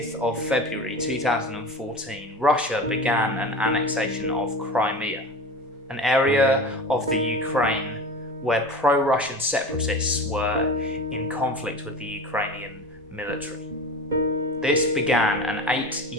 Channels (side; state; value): both; normal; correlation 0.31